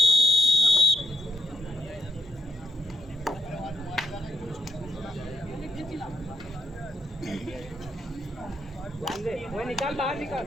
ध्यान दे, वो निकाल, बाहर निकाल.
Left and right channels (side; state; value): both; normal; correlation 0.71